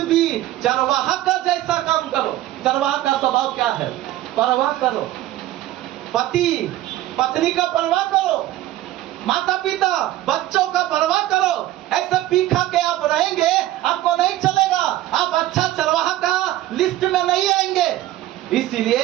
भी चरवाहा का जैसा काम करो। चरवाहा का स्वभाव क्या है? परवाह करो, पति पत्नी का परवाह करो, माता पिता बच्चों का परवाह करो। ऐसे पी खा के आप रहेंगे, आपको नहीं चलेगा। आप अच्छा चरवाहा का लिस्ट में नहीं आएंगे।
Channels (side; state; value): left; quieter; 14.6 dB